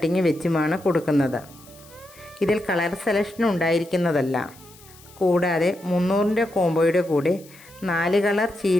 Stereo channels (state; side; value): noise; left; hiss, 24 dB below the sound